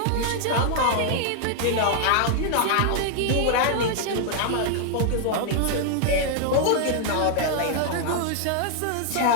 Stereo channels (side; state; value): both; different; correlation 0.00